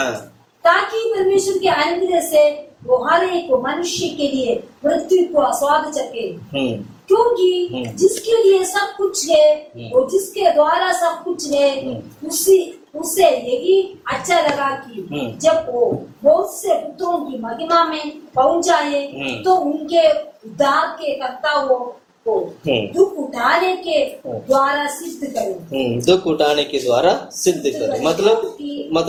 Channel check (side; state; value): both; identical; correlation 1.00